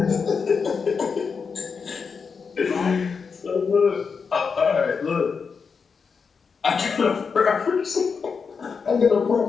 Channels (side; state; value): right; quieter; 5.6 dB